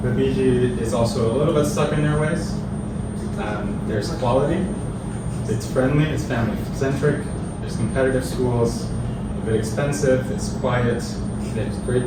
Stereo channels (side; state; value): both; identical; correlation 1.00